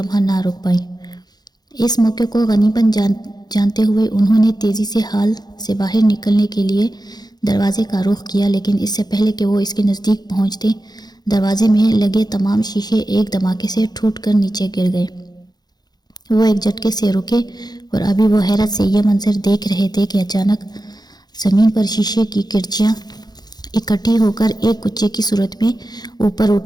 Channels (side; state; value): right; late; 0.19 ms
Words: نہ رک پائیں۔ اس موقع کو غنیمت جانتے ہوئے انہوں نے تیزی سے حال سے باہر نکلنے کے لیے دروازے کا رخ کیا، لیکن اس سے پہلے کہ وہ اس کے نزدیک پہنچتے، دروازے میں لگے تمام شیشے ایک دھماکے سے ٹوٹ کر نیچے گر گئے۔ وہ ایک جھٹکے سے رکے، اور ابھی وہ حیرت سے یہ منظر دیکھ رہے تھے کہ اچانک زمین پر شیشے کی کرچیاں اکٹھی ہو کر ایک کچے کی صورت میں اوپر